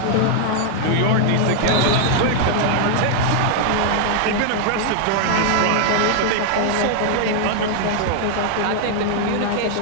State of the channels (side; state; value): both; different; correlation 0.00